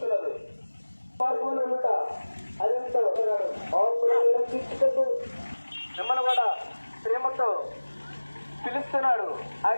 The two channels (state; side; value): inverted; both; correlation -1.00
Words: మార్గంలో ఉంట అదంతా ఒకనాడు తీర్చుకుంటూ మిమ్మల్ని కూడా ప్రేమతో పిలుస్తున్నాడు.